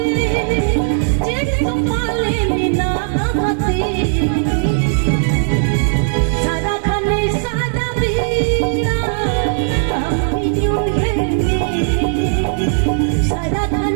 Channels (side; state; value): left; silent; digital silence